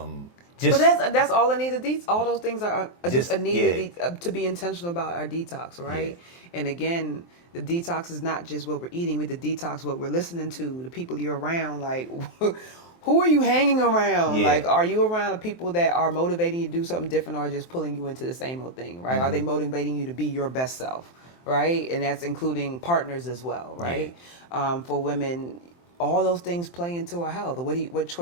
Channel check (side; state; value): right; late; 23 ms